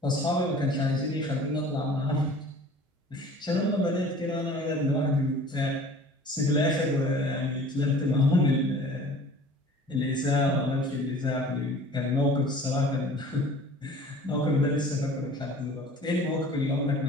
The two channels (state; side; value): normal; both; correlation 0.46